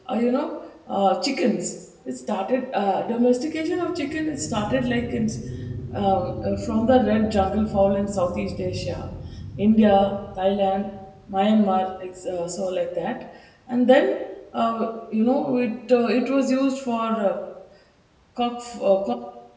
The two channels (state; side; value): identical; both; correlation 1.00